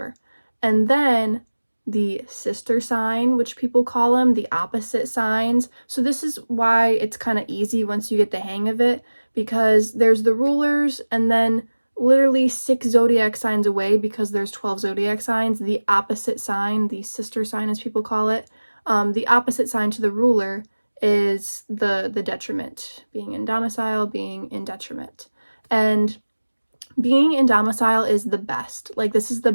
And then the sister sign, which people call them, the opposite signs. So this is why it's kind of easy once you get the hang of it, because there's the rulers and then literally 6 zodiac signs away, because there's 12 zodiac signs, the opposite sign, the sister sign as people call it, the opposite sign to the ruler is the detriment, being in domicile, being in detriment. And being in domicile is the best. Like, this is the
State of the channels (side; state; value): both; inverted; correlation -1.00